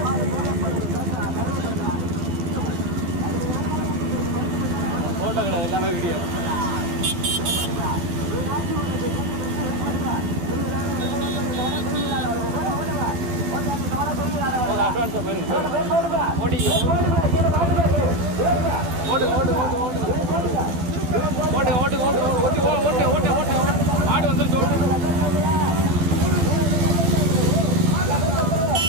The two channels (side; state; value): left; late; 12 ms